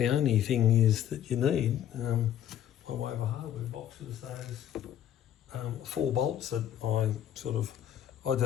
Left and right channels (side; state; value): right; quieter; 10.7 dB